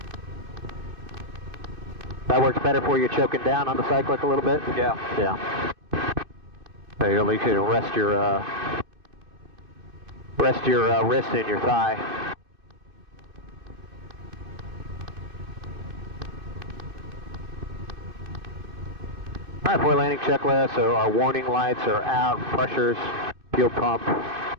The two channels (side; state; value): left; late; 2.6 ms